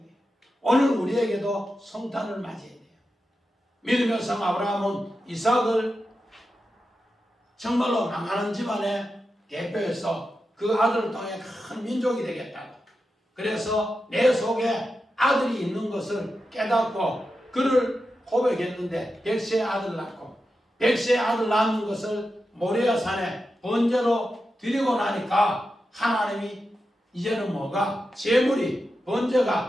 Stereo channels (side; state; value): both; normal; correlation 0.90